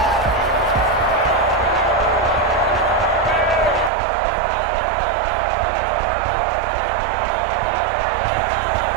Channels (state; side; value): drops out; left; at 3.9 s